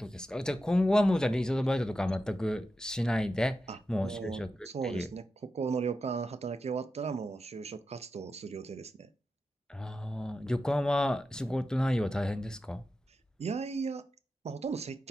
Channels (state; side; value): normal; both; correlation 0.90